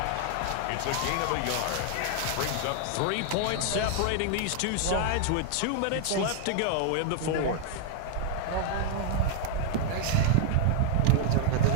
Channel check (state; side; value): different; both; correlation 0.00